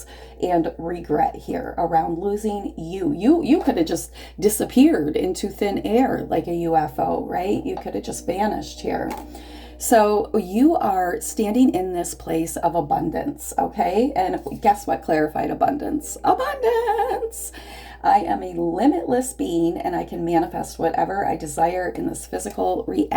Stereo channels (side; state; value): both; identical; correlation 1.00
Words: and regret here around losing you. You could have just disappeared into thin air like a UFO, right? You could have just vanished here. So you are standing in this place of abundance, okay? And guess what clarified abundance? Abundance! I am a limitless being and I can manifest whatever I desire in this physical